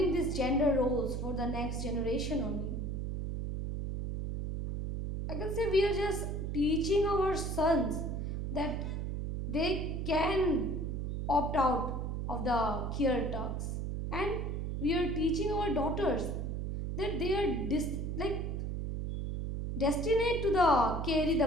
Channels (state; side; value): noise; right; hum, 3 dB below the sound